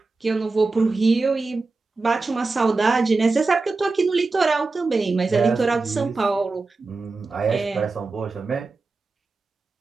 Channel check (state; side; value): quieter; left; 3.7 dB